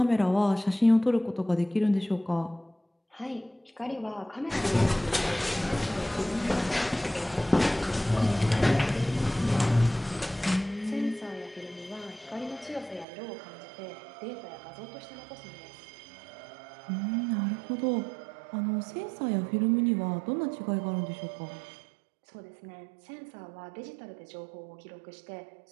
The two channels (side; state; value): left; drops out; at 13.1 s